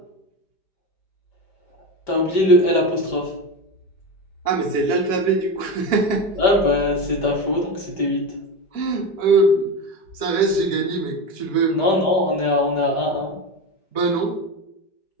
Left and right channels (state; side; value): late; right; 5.1 ms